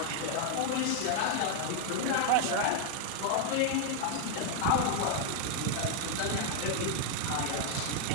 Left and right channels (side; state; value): both; different; correlation 0.00